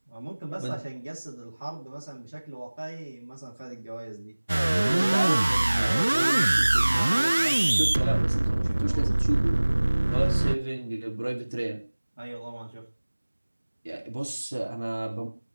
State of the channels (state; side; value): inverted; both; correlation -1.00